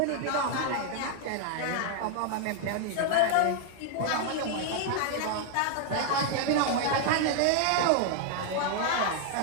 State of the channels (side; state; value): both; different; correlation 0.00